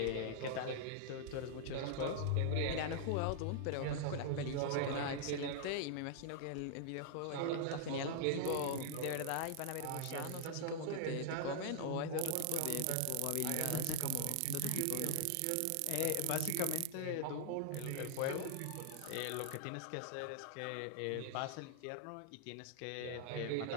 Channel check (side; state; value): both; different; correlation -0.01